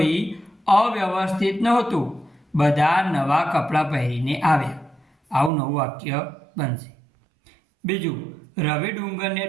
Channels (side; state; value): left; drops out; at 5.5 s